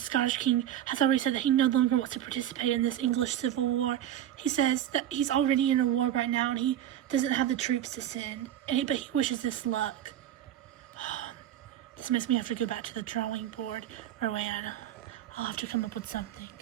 king, has already said that he no longer wants to participate in this English civil war. He says that he's already in a war right now and he doesn't have the troops to send. But he wishes us luck. This makes me have to go back to the drawing board, Rowan. I'll have to come up with something.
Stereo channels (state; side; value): quieter; left; 11.4 dB